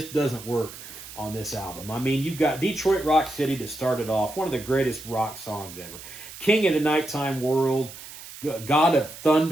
doesn't work on this album. I mean, you've got Detroit Rock City to start it off, one of the greatest rock songs ever. King of the Nighttime World, God of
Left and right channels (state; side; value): noise; right; hiss, 14 dB below the sound